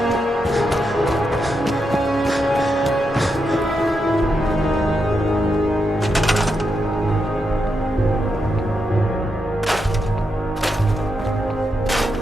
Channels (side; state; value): both; normal; correlation 0.84